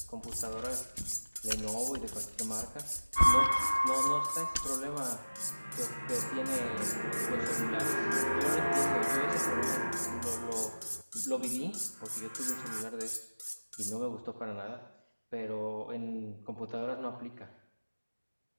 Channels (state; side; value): inverted; both; correlation -1.00